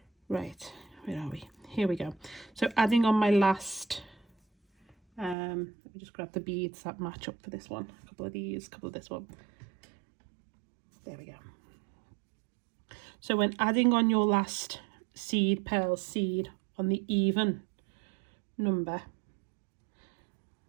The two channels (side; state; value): left; drops out; at 5.4 s